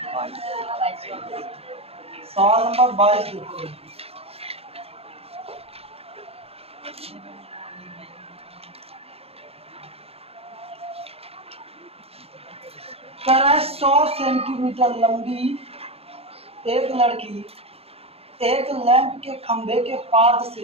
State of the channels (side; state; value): left; late; 0.29 ms